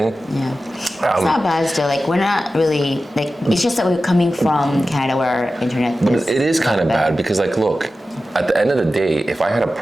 Yeah. It's not bad still. Like we're not really like, it's just that we're coming from Canada where our internet But it is kind of bad because like look, at the end of the day, if I had a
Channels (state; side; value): normal; both; correlation 0.94